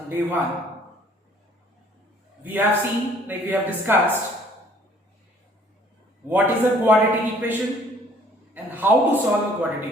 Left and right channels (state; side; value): normal; both; correlation 0.58